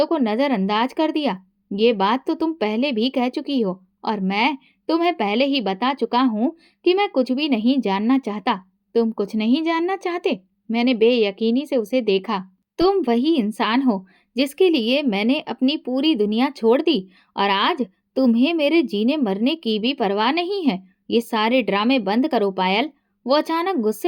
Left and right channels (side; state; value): both; identical; correlation 1.00